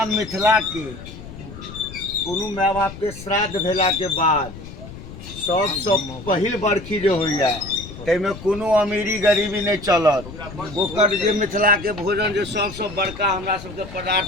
मिथिला के कोनो माय बाप के श्राद्ध भेला के बाद सबसे पहिल बरखी जो होइया तैमे कोनो अमीरी गरीबी नहीं चलत। ओकर जे मिथिला के भोजन जो सबसे बड़का हमरा सबके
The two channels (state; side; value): noise; left; rumble, 13 dB below the sound